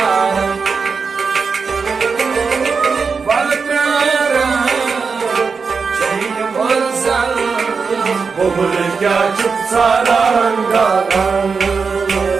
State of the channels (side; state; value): left; quieter; 5.2 dB